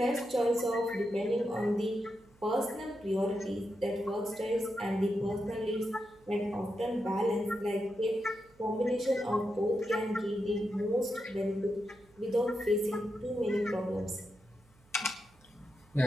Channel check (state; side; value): noise; right; hum, 30 dB below the sound